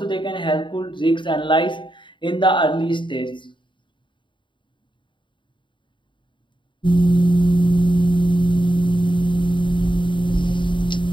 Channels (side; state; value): right; late; 0.23 ms